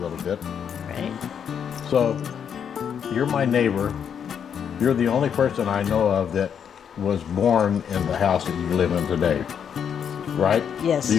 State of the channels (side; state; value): right; quieter; 7.9 dB